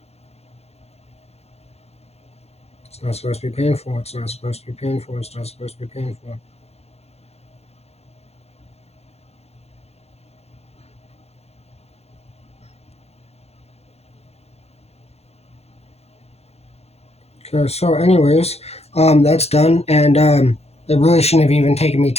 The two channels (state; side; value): late; right; 0.30 ms